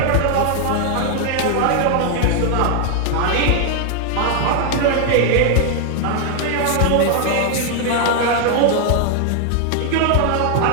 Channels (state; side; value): different; both; correlation 0.00